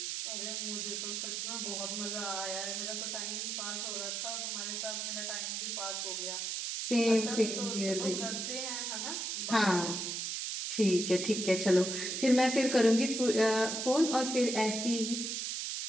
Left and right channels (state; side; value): noise; right; hiss, 3 dB below the sound